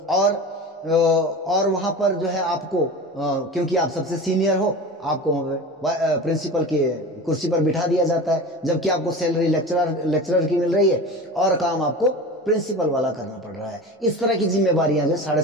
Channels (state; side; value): normal; both; correlation 0.32